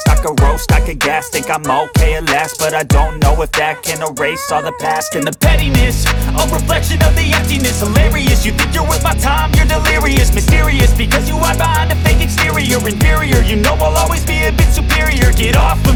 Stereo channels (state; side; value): identical; both; correlation 1.00